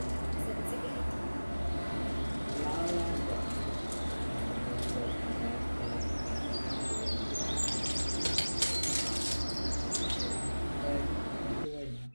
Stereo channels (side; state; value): both; inverted; correlation -1.00